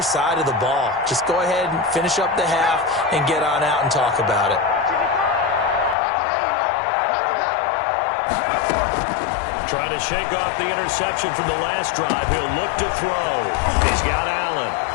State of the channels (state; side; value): drops out; right; at 6.0 s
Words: side of the ball. Just go ahead and finish up the half and get on out and talk about it. Trying to shake off the interception from the last drive. He'll look to throw. He's got Allen.